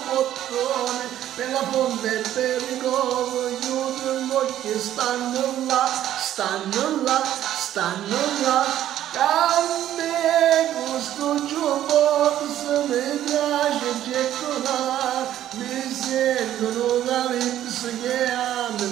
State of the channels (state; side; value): quieter; left; 12.0 dB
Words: bottone, per la fonte e per il covo, gli udri che stanno là, a me questo jukebox mi piace gettonare, mi sentono da lips che mi